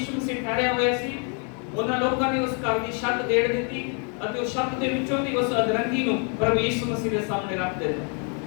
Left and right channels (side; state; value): right; quieter; 39.3 dB